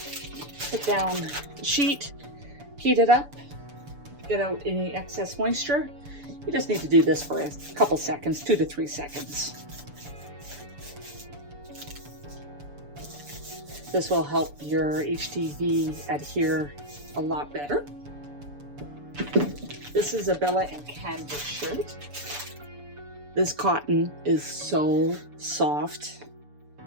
put down the sheet, heat it up, get out any excess moisture. You just need to do this for a couple seconds, 2 to 3 seconds. This will help your HTV adhere a lot better. This is a Bella and Canvas shirt. This cotton is so soft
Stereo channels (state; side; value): late; left; 6.9 ms